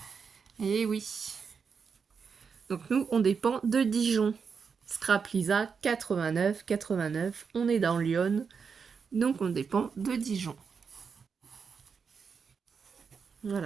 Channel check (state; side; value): quieter; left; 5.9 dB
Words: Et oui. Donc nous, on dépend de Dijon. Scrap Lisa, 89, 89. On est dans Lyon. Donc on dépend de Dijon.